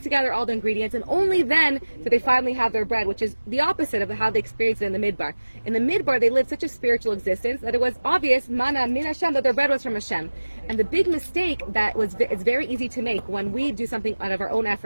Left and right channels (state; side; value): inverted; both; correlation -1.00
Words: together all the ingredients, and only then do they finally have their bread, which is the opposite of how they experienced it in the Midbar. In the Midbar, they lived such a spiritual existence that it was obvious, mana min Hashem, that their bread was from Hashem. And the big mistake it's very easy to make when we do something out of our own